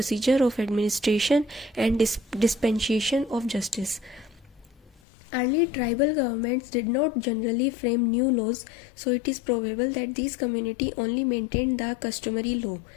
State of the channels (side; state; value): right; drops out; at 5.0 s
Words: of administration and dispensation of justice. Early tribal governments did not generally frame new laws, so it is probable that these communities only maintained the customary law.